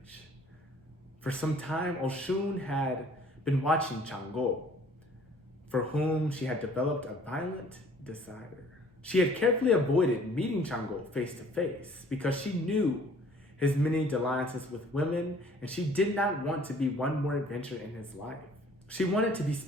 For some time, Oshún had been watching Changó, for whom she had developed a violent desire. She had carefully avoided meeting Changó face to face because she knew his many dalliances with women, and she did not want to be one more adventure in his life. She wanted to be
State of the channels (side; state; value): both; normal; correlation 0.55